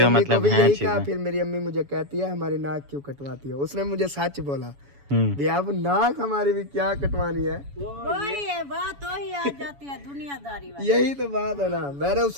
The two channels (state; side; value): late; left; 7.1 ms